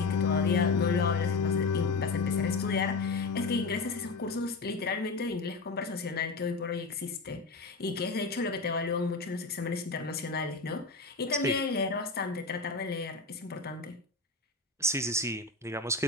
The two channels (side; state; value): right; quieter; 3.9 dB